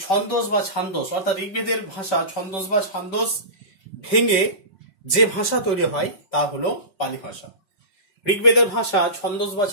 ছন্দোস বা ছান্দোস, অর্থাৎ ঋগ্বেদের ভাষা ছন্দোস বা ছান্দোস ভেঙে যে ভাষা তৈরি হয় তা হলো পালি ভাষা। ঋগ্বেদের ভাষা ছন্দোস বা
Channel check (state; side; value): late; right; 5.1 ms